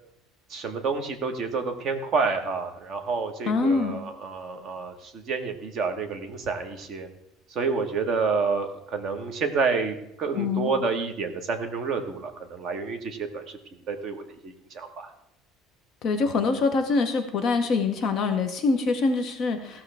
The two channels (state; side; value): normal; both; correlation 0.51